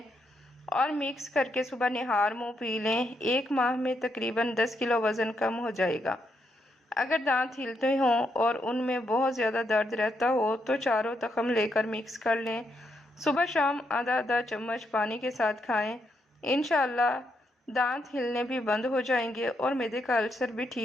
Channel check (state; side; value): normal; both; correlation 0.79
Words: اور مکس کر کے صبح نہار منہ پی لیں۔ 1 ماہ میں تقریباً 10 کلو وزن کم ہو جائے گا۔ اگر دانت ہلتے ہوں اور ان میں بہت زیادہ درد رہتا ہو تو چاروں تخم لے کر مکس کر لیں۔ صبح شام آدھا آدھا چمچ پانی کے ساتھ کھائیں۔ انشاءاللہ دانت ہلنے بھی بند ہو جائیں گے اور معدے کا السر بھی